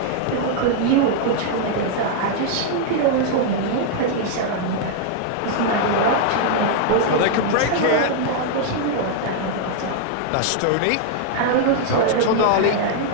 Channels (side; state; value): both; different; correlation 0.00